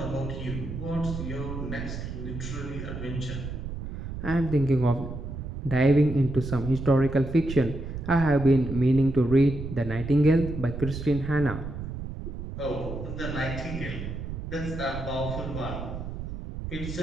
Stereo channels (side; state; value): right; noise; rumble, 7 dB below the sound